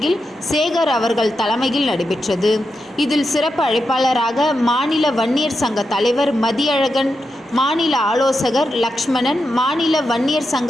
சேகர் அவர்கள் தலைமையில் நடைபெற்றது. இதில் சிறப்பு அழைப்பாளராக மாநில வன்னியர் சங்க தலைவர் மதியழகன், மாநில ஆலோசகர் லக்ஷ்மணன், மாநில வன்னியர்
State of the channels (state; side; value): normal; both; correlation 0.87